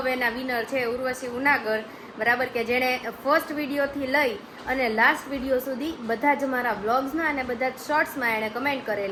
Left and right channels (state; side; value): identical; both; correlation 1.00